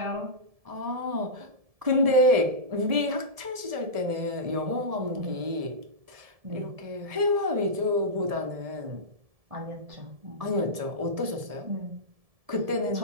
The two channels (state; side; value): late; left; 1.7 ms